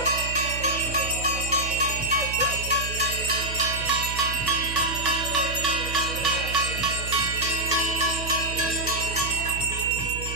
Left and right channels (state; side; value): noise; right; hum, 8 dB below the sound